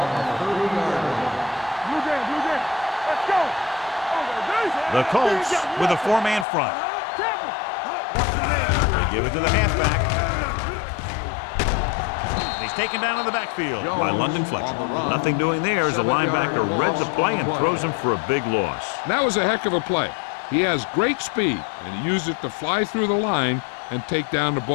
the 30-yard line. Blue game, blue game. Let's go. The Colts with a 4-man front. Tackle. They give it to the halfback. He's taken down in the backfield by London Fletcher. Nothing doing there as the linebacker read the play and throws him for a big loss. That was a heck of a play. He has great speed, and he used it to fly through the line and take down the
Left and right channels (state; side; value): drops out; right; at 6.5 s